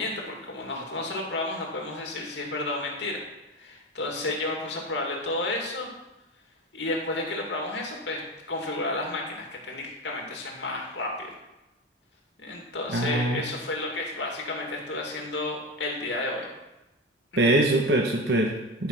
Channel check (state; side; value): normal; both; correlation 0.21